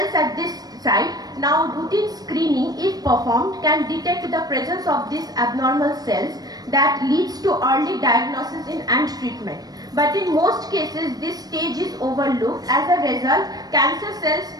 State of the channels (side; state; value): left; late; 0.19 ms